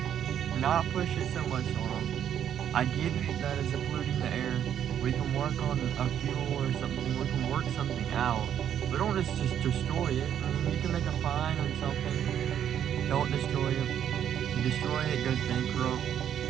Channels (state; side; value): quieter; left; 9.7 dB